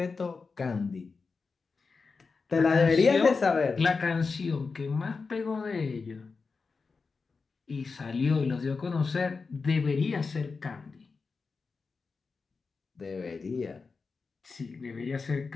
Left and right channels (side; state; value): right; quieter; 4.6 dB